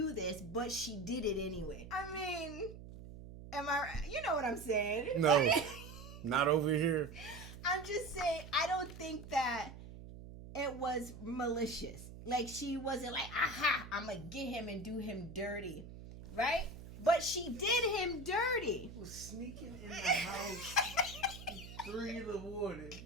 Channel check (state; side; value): noise; right; hum, 14 dB below the sound